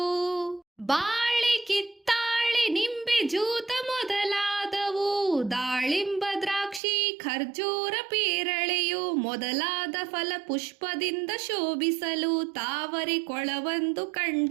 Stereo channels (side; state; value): left; drops out; at 6.8 s